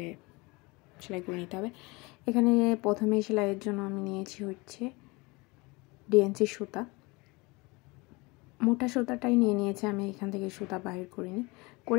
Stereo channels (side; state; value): right; quieter; 25.2 dB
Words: সেলাই করে নিতে হবে। এখানে প্রথমে সেলাইয়ের জন্য আমি নিয়েছি হচ্ছে ডিএনসি সুতা। মোটা সুতাটাই নিয়েছি আমি, এখান থেকে সুতা বাহির করিনি।